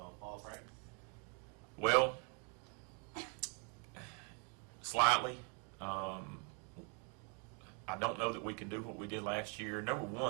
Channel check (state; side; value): quieter; left; 38.0 dB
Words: practice? Well, slightly. I don't know that we can do what we did last year. Number